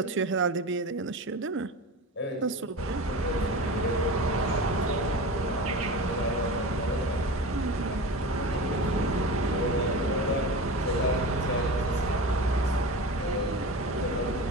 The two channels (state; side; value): normal; both; correlation 0.29